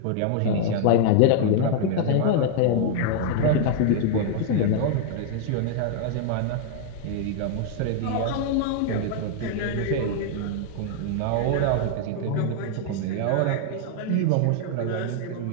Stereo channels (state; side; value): different; both; correlation 0.00